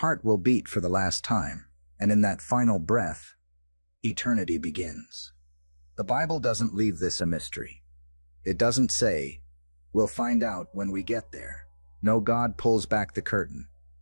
will beat for the last time, and in that final breath, eternity begins. The Bible doesn't leave this a mystery. It doesn't say, we'll find out when we get there. No, God pulls back the curtain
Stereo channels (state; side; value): inverted; both; correlation -1.00